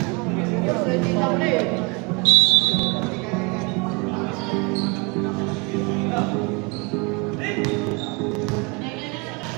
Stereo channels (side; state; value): left; quieter; 29.8 dB